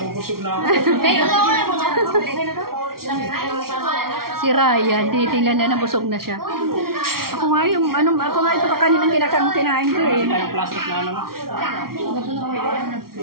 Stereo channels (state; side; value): late; left; 0.93 ms